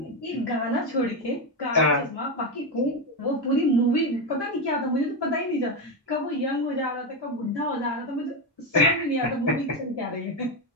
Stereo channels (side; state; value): both; normal; correlation 0.11